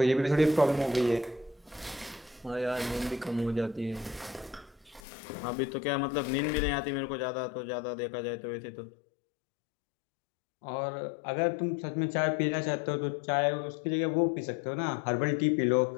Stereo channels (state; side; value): drops out; right; at 5.0 s